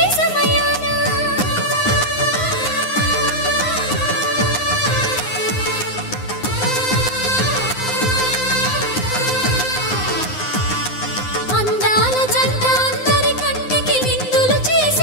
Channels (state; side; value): late; right; 9.7 ms